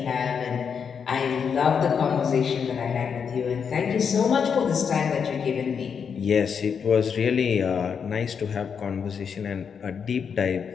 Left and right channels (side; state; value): right; quieter; 6.7 dB